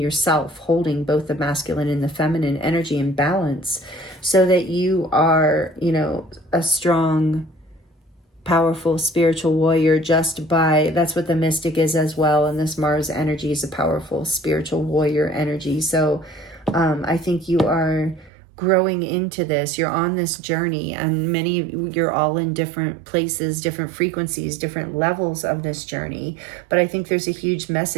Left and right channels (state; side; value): drops out; left; at 18.3 s